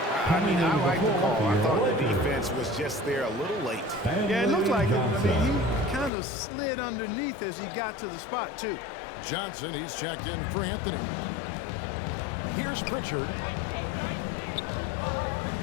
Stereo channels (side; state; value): right; drops out; at 6.1 s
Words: I mean, I like the call. I thought the defense was just there a little late. Yeah, it looked like it. I mean, he kind of slid underneath as he got to the spot, too. Johnson, he's checked in for Anthony. Here's Pritchard.